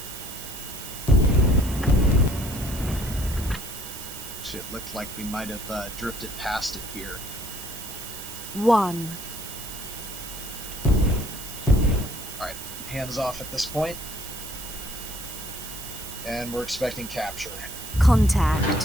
It looked like we might have drifted past it here. 1. Alright, hands off at this point. And we're expecting capture.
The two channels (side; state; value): right; noise; hiss, 10 dB below the sound